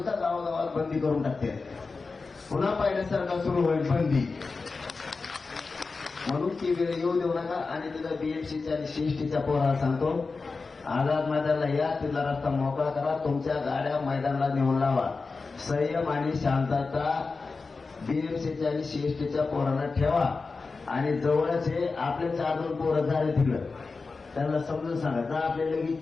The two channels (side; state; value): right; quieter; 4.2 dB